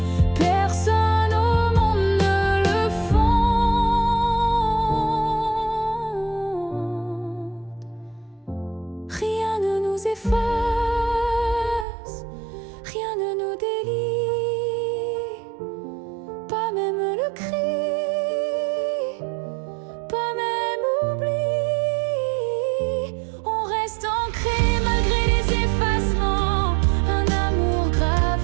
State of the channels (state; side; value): drops out; left; at 11.9 s